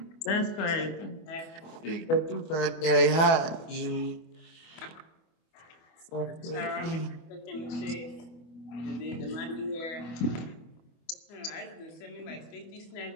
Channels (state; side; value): late; right; 24 ms